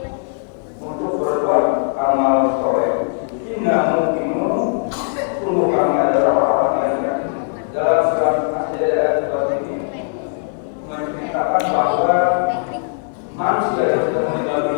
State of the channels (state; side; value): silent; right; digital silence